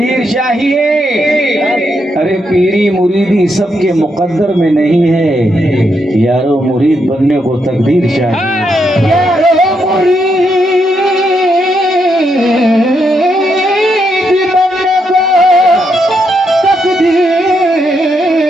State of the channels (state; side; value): normal; both; correlation 0.80